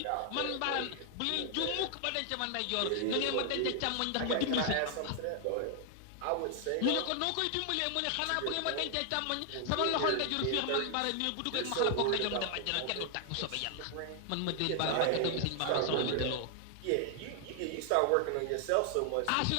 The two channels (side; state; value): both; different; correlation 0.00